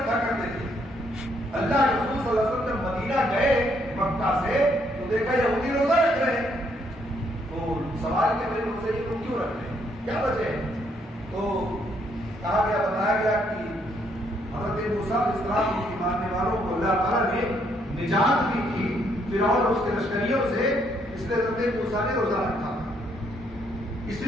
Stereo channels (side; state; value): both; normal; correlation 0.71